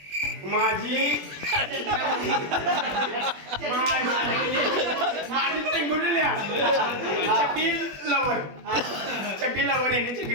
चड्डी लवर याने चड्डी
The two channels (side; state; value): left; late; 21 ms